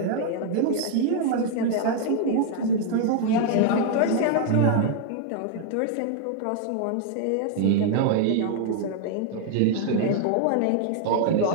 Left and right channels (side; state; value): both; different; correlation 0.00